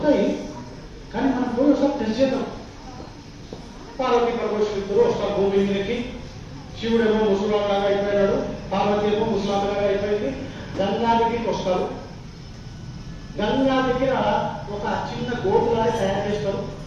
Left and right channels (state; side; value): identical; both; correlation 1.00